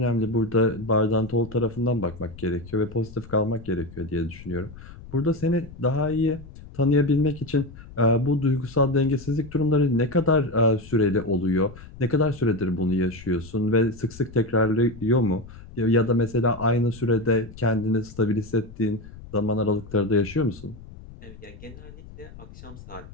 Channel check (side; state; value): left; noise; rumble, 17 dB below the sound